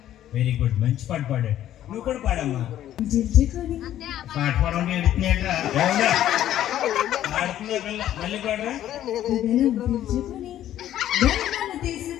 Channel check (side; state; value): right; quieter; 12.1 dB